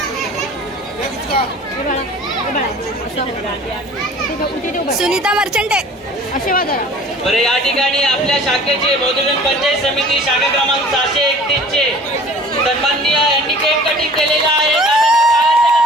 सुनीता मर्चंट आहे. बरं, या ठिकाणी आपल्या शाखेचे मधुजन पंचायत समिती शाखा क्रमांक 631 चे सन्माननीय यांनी केक कटिंग केलेला आहे.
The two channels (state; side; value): normal; both; correlation 0.46